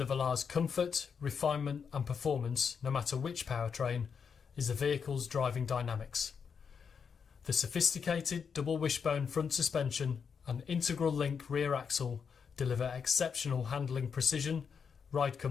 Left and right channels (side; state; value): right; quieter; 6.4 dB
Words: Velar's comfort, refinement and performance, no matter which powertrain, is the vehicle's driving dynamics. The sophisticated double wishbone front suspension and integral link rear axle deliver exceptional handling precision, ride